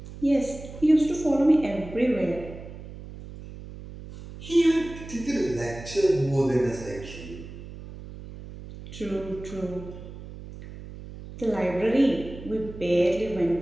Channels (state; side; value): noise; right; hum, 14 dB below the sound